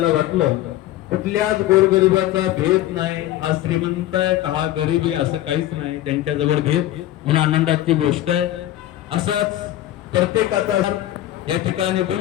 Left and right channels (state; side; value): quieter; right; 14.0 dB